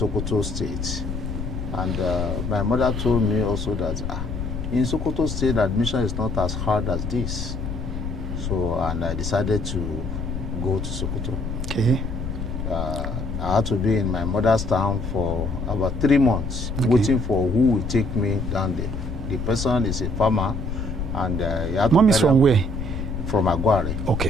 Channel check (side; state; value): left; noise; rumble, 4 dB below the sound